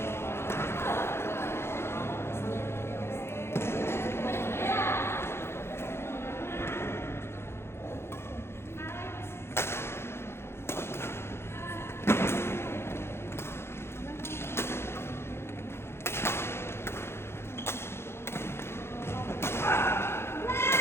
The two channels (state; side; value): late; right; 0.12 ms